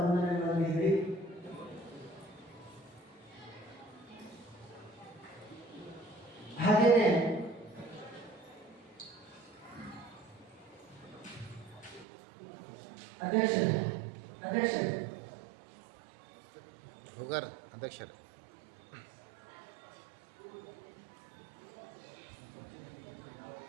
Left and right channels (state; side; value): drops out; left; at 12.1 s